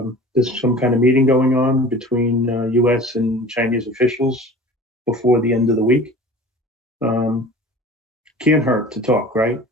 there's some kind of meeting going on between U.S. and Chinese officials before the end of the week. Can't hurt to talk, right?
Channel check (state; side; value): normal; both; correlation 0.41